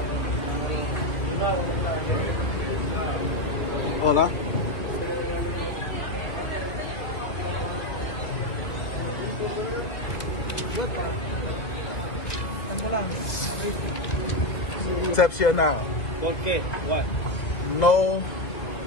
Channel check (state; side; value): late; right; 2.5 ms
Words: Hola. Exception now. ¿Por qué? What? No